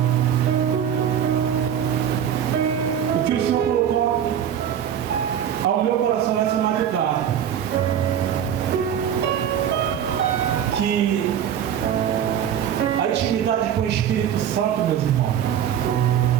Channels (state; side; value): quieter; left; 9.3 dB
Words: O que o Senhor colocou ao meu coração essa madrugada. Que a intimidade com o Espírito Santo, meus irmãos,